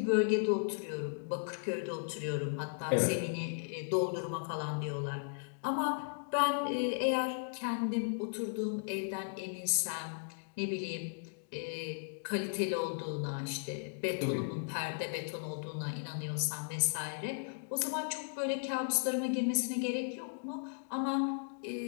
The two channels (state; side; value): silent; right; digital silence